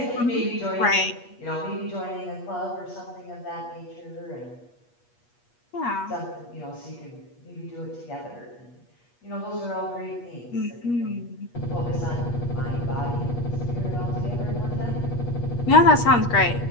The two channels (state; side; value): late; right; 8.4 ms